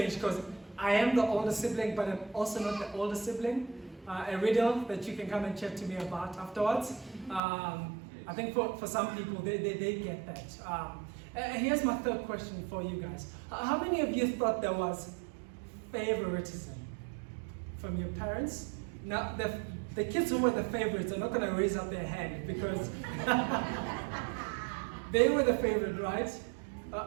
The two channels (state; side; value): drops out; left; at 7.4 s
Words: because I am the older sibling, but I'm also not the older sibling. A riddle that you can come and chat to me about afterwards. I think for some people, they get that. Here's my third question for you guys. How many of you thought there was favoritism from your parents? Now, the kids who were the favorites are not going to raise up their hand because they were the favorite, right?